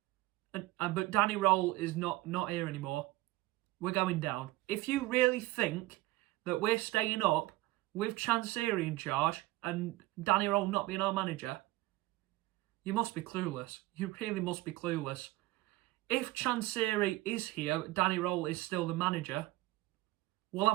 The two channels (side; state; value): left; quieter; 18.6 dB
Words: but Danny Rowell is not here anymore, we're going down. If you really think that we're staying up with Chansiri in charge and Danny Rowell not being our manager, you must be clueless. You really must be clueless. If Chansiri is here, Danny Rowell is still the manager, we'll